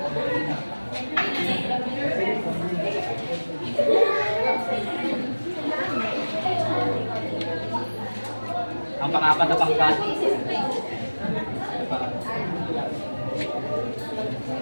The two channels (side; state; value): both; inverted; correlation -1.00